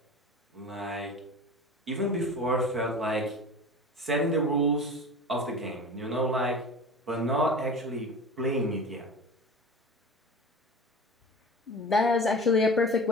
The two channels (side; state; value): both; normal; correlation 0.35